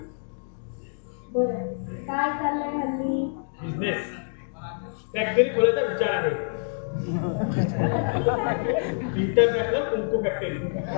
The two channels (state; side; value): silent; right; digital silence